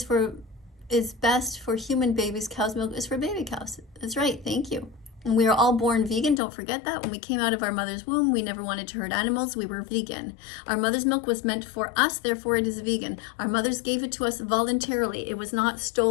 best for human babies. Cow's milk is for baby cows. That's right, thank you. And we are all born vegan, don't forget that. When we came out of our mother's womb, we never wanted to hurt animals, we were vegan. Our mother's milk was meant for us, therefore it is vegan. Our mothers gave it to us voluntarily, it was not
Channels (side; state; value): right; drops out; at 6.4 s